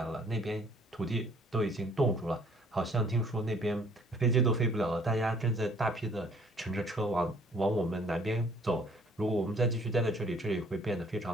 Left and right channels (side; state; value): both; normal; correlation 0.59